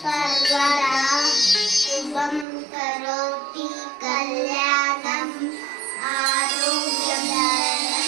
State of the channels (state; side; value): drops out; left; at 2.5 s